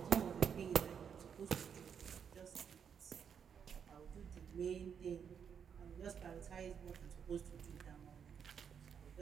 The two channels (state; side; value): quieter; left; 7.4 dB